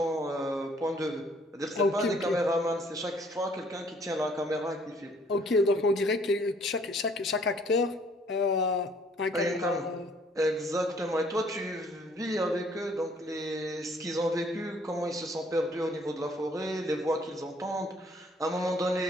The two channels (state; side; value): normal; both; correlation 0.61